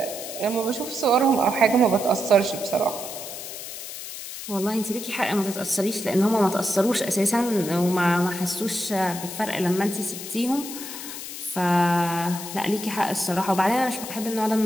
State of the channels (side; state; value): left; noise; hiss, 9 dB below the sound